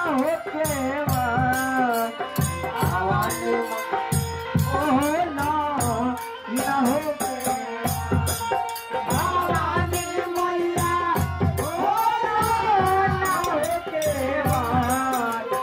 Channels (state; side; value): identical; both; correlation 1.00